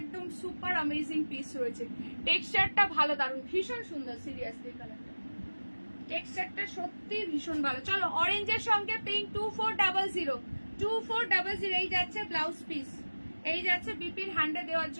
সুপার অ্যামেজিং পিস রয়েছে। টেক্সচারটা ভালো, দারুন, ভীষণ সুন্দর। সিরিয়াসলি কালারটা, টেক্সচারটা সত্যি ভীষণ ভালো। চলো অরেঞ্জের সঙ্গে পিঙ্ক 2400 এই যাচ্ছে ব্লাউজ পিস, এই যাচ্ছে বিপির হ্যান্ডে দেওয়ার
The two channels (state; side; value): inverted; both; correlation -1.00